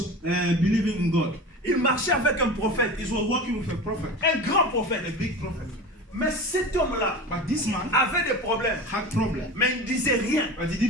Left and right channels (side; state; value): both; normal; correlation 0.32